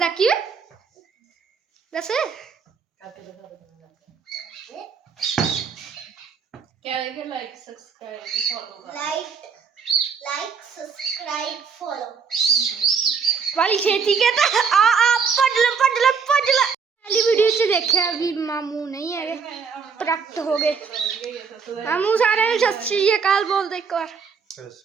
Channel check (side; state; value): left; quieter; 5.9 dB